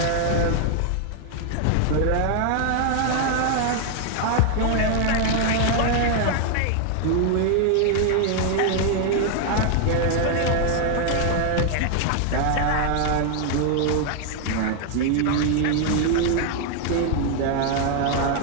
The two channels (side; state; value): both; different; correlation 0.00